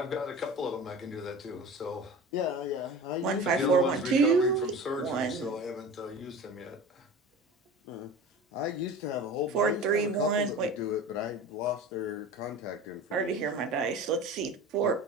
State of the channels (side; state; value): both; normal; correlation 0.35